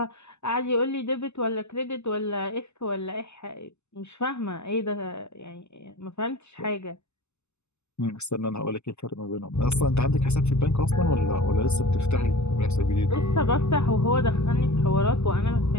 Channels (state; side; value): late; right; 0.81 ms